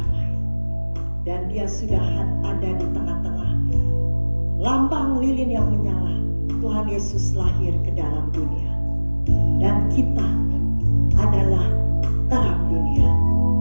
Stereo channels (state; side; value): inverted; both; correlation -1.00